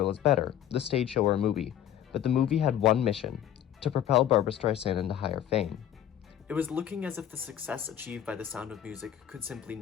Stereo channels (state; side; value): quieter; right; 10.7 dB